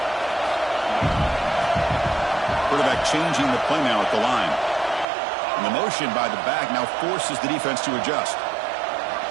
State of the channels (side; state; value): left; drops out; at 5.1 s